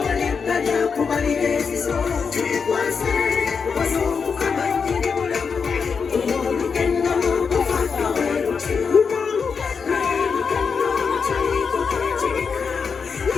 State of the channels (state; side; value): quieter; right; 5.7 dB